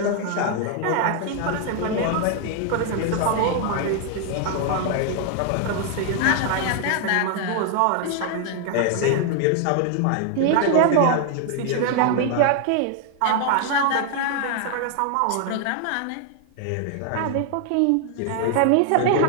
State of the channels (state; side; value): different; both; correlation 0.00